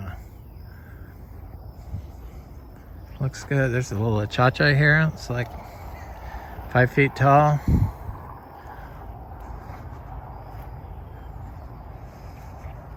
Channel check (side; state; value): both; identical; correlation 1.00